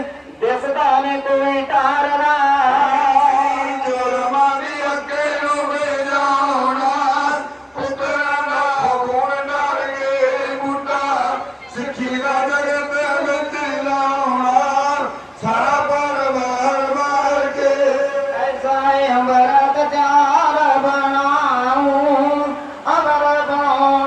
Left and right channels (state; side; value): identical; both; correlation 1.00